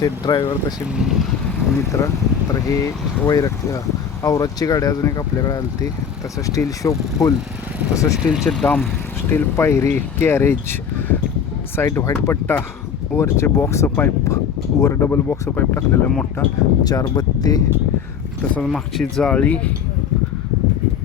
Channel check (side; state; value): right; quieter; 7.3 dB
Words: ड्रायव्हर, तसे मित्र. तर हे औरतची गाडी अजून एक आपल्याकडे आली ती. तसं स्टील शॉप फुल, तसं स्टीलचे डाम, स्टील पायरी, कॅरेज, साईड व्हाईट पट्टा, वरचे बॉक्स पाईप, वर डबल बॉक्स पाईप टाकलेला मोठा, 4 बत्ती, तसंच मागची जाळी,